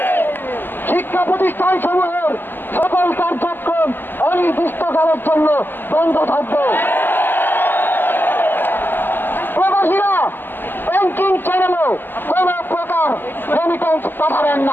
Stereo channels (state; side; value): late; right; 0.094 ms